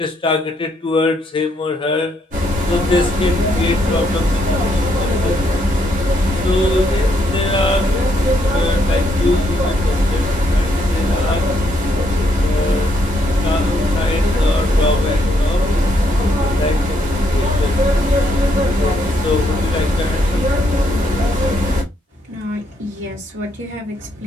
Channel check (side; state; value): both; normal; correlation 0.74